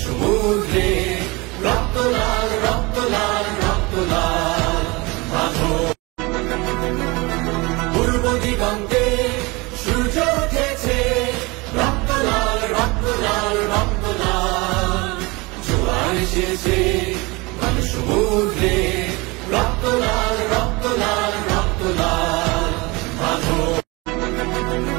সমুদ্রে, রক্ত লাল রক্ত লাল রক্ত লাল। বাঁধো পূর্ব দিগন্তে সূর্য উঠেছে, রক্ত লাল রক্ত লাল রক্ত লাল। জোয়ার এসেছে মানে সমুদ্রে, রক্ত লাল রক্ত লাল রক্ত লাল। বাঁধো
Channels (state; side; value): quieter; left; 25.0 dB